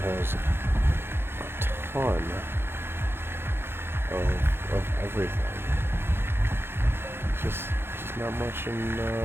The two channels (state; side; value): late; left; 0.11 ms